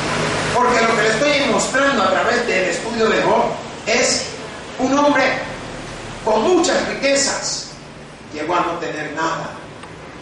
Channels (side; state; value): both; identical; correlation 1.00